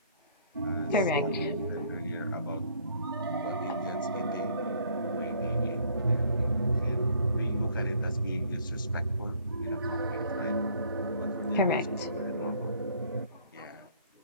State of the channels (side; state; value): both; inverted; correlation -0.61